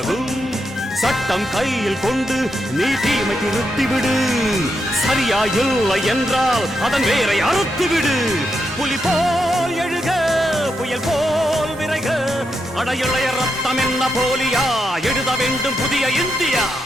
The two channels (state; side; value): normal; both; correlation 0.83